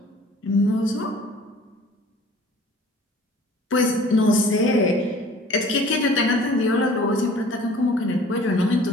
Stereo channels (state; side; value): normal; both; correlation 0.49